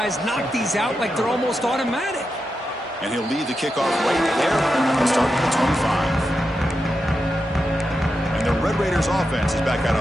knock these out like they're almost automatic. And he'll lead the kickoff right there and start at the 25. And the Red Raiders offense is back out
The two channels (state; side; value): normal; both; correlation 0.88